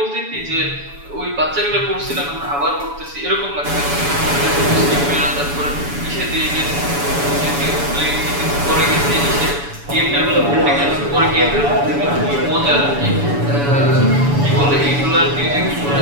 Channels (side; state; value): left; late; 7.0 ms